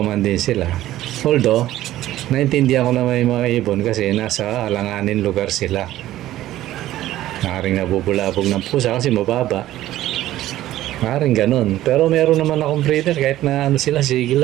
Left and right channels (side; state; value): left; quieter; 14.4 dB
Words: din sila. Although, naintindihan ko na may mga ibon kasi nasa alanganin lugar sila. Maaaring nabubulabog ng pusa kasi mababa. Maaaring ganun. Pero meron naman akong breeder kahit na sila, sige